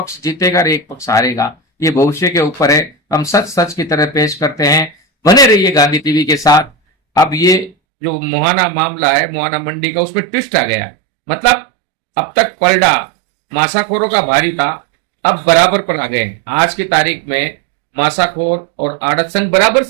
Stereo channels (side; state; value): left; drops out; at 7.8 s